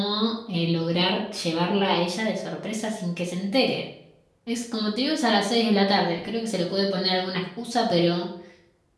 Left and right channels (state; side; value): identical; both; correlation 1.00